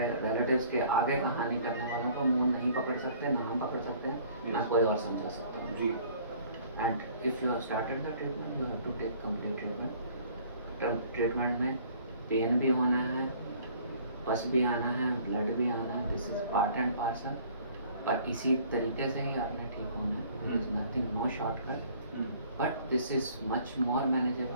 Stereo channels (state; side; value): inverted; both; correlation -0.54